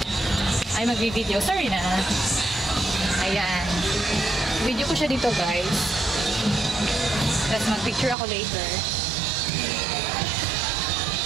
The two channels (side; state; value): left; drops out; at 8.2 s